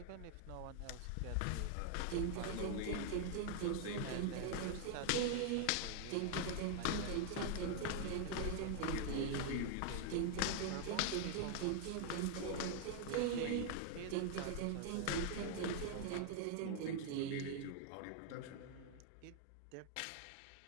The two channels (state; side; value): different; both; correlation 0.00